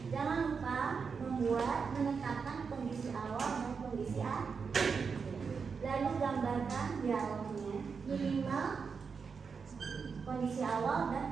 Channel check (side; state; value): left; quieter; 5.6 dB